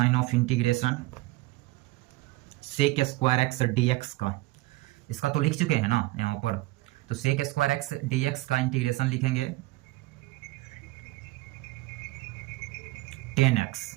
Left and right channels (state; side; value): quieter; left; 19.5 dB